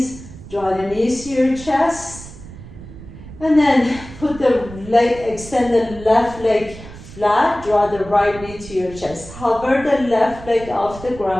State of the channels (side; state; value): right; noise; rumble, 15 dB below the sound